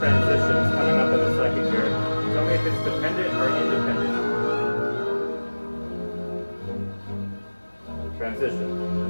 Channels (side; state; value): both; inverted; correlation -1.00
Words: coming up in a second here. Tell me if it's dependent or independent. Transition.